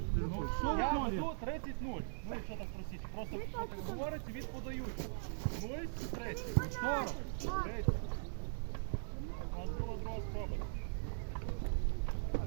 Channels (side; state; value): left; silent; digital silence